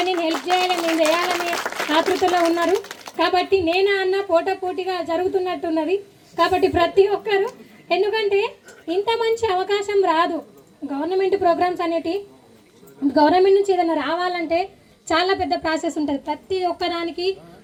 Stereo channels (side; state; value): both; identical; correlation 1.00